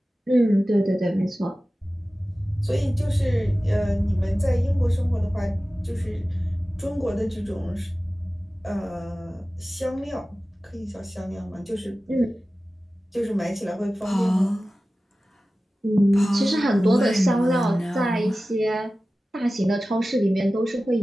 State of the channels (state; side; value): normal; both; correlation 0.96